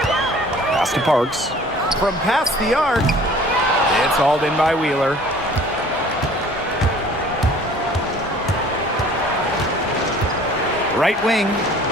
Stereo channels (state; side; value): normal; both; correlation 0.50